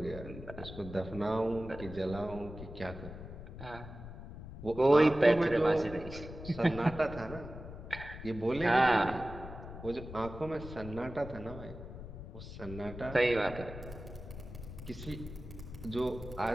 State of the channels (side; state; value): left; noise; rumble, 12 dB below the sound